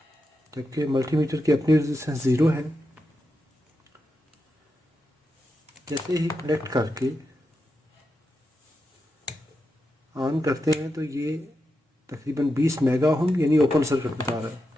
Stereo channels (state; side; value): normal; both; correlation 0.87